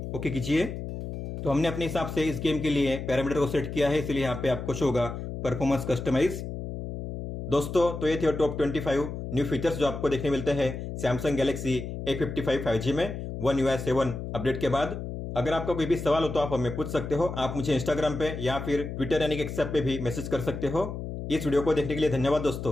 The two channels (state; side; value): noise; left; hum, 7 dB below the sound